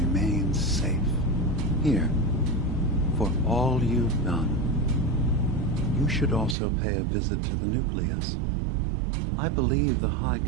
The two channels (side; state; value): left; drops out; at 6.6 s